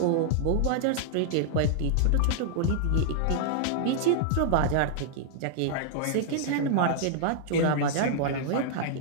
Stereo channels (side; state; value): both; different; correlation -0.01